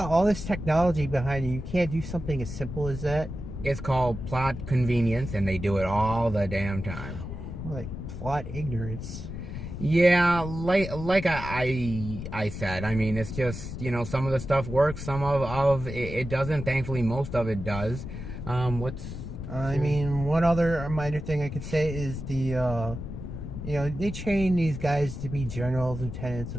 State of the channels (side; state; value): left; noise; rumble, 8 dB below the sound